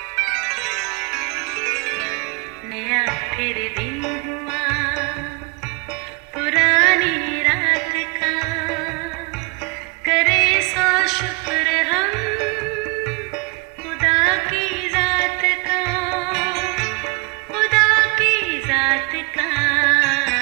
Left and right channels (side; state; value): left; quieter; 30.4 dB